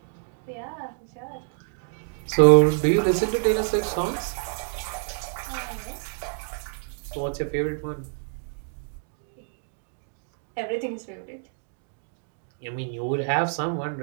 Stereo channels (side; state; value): left; silent; digital silence